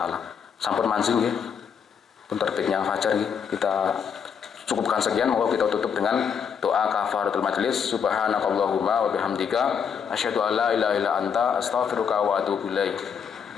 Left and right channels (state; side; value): quieter; right; 7.2 dB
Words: Sampun manjing ya. Pun terbitnya fajar ya. Kita cukupkan sekian, moga kita tutup dengan doa kafaratul majelis. Subhanakallahumma wa bihamdika asyhadu an la ilaha illa anta astaghfiruka wa atubu ilaik.